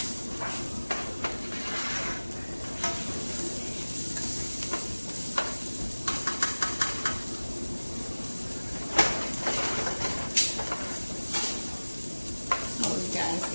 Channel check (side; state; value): both; inverted; correlation -1.00